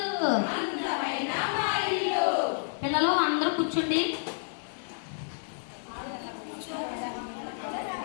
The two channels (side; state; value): right; silent; digital silence